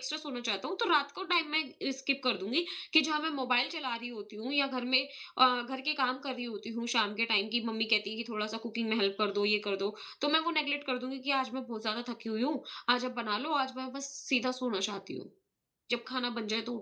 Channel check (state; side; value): identical; both; correlation 1.00